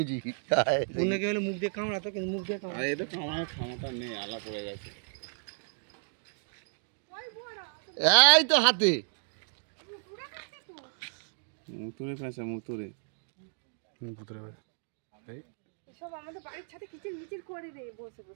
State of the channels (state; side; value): silent; left; digital silence